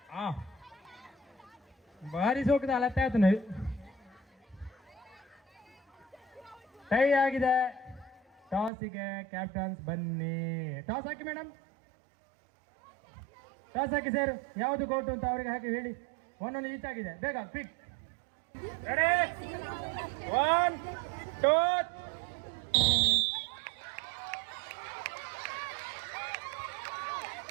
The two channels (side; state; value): left; drops out; at 8.7 s